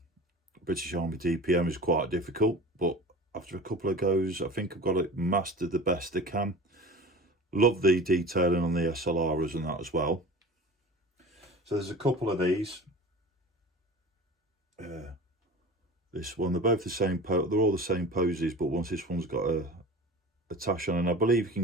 Army DPM is quite difficult, but after a couple of goes, I think I've got it mastered the best I can. Love the detailing on the SLRs and that as well. So there's a couple of these. This one, they're both the same, they're all the same poses, but this one's got a tash on, and I believe you can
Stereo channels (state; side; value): normal; both; correlation 0.37